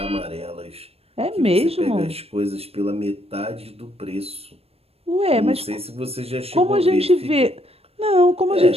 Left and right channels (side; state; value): left; late; 0.29 ms